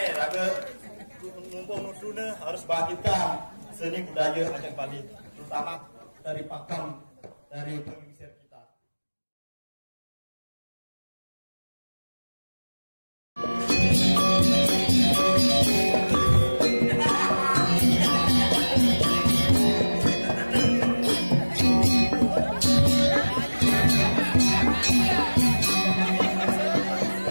raga numpang nuduna harus bangkitkan seni budaya Aceh Bali, terutama dari pakem, dari pengisir kita.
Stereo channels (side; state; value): both; inverted; correlation -1.00